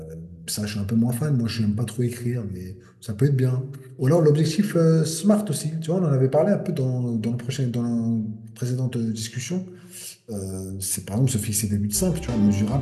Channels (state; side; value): identical; both; correlation 1.00